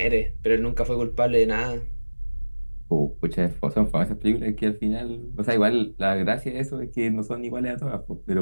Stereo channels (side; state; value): both; inverted; correlation -1.00